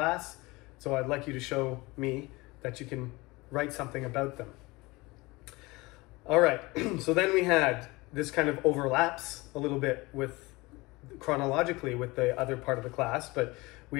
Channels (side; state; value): right; quieter; 22.7 dB